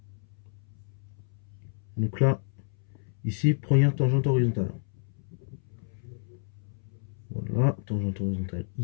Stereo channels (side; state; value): right; silent; 58 dB below the other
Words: Donc là, ici, première tangente horizontale. Voilà, tangente horizontale